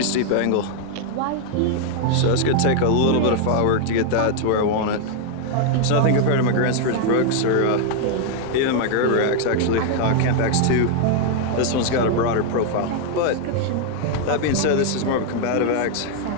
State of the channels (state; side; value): different; both; correlation 0.00